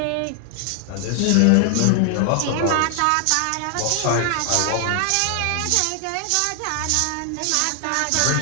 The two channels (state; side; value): different; both; correlation 0.00